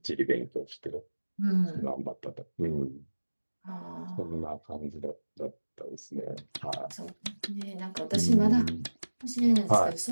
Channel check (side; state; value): both; inverted; correlation -1.00